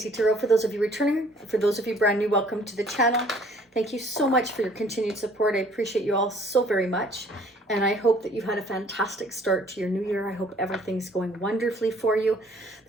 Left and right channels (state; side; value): normal; both; correlation 0.57